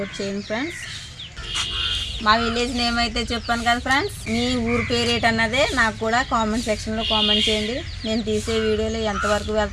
చేయండి ఫ్రెండ్స్. మా విలేజ్ నేమ్ అయితే చెప్పాను కదా ఫ్రెండ్స్. మీ ఊరు పేరేంటి అన్నదే నాకు కూడా కామెంట్ సెక్షన్లో కామెంట్ చేయండి. నేను తీసే వీడియోలు ఎంతవరకు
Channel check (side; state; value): both; identical; correlation 1.00